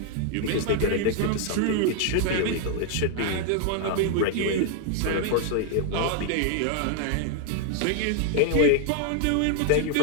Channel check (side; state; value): both; different; correlation 0.00